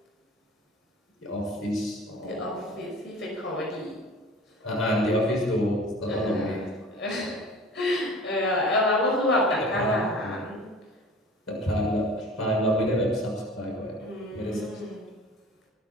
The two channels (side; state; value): both; normal; correlation 0.42